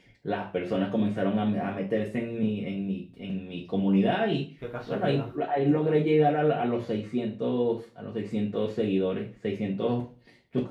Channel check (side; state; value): both; identical; correlation 1.00